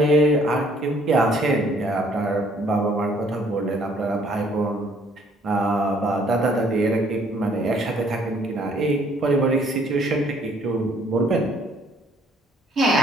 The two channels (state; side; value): normal; both; correlation 0.62